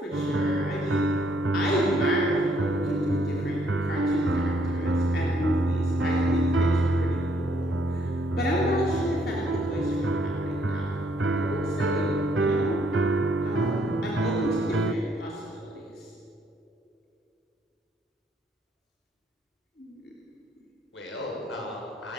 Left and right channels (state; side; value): normal; both; correlation 0.69